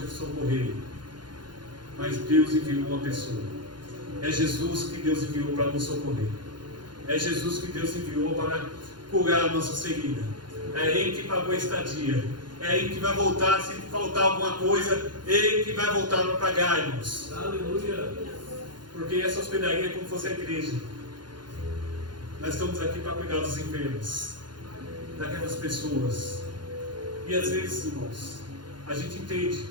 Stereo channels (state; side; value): late; left; 0.71 ms